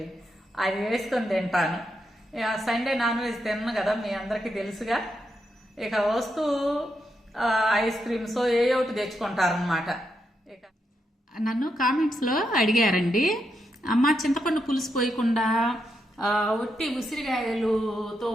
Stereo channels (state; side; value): normal; both; correlation 0.82